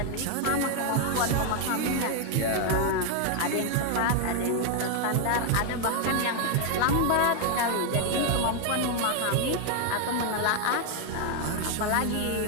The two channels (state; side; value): different; both; correlation 0.01